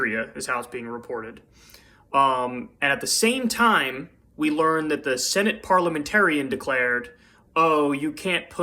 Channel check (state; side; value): identical; both; correlation 1.00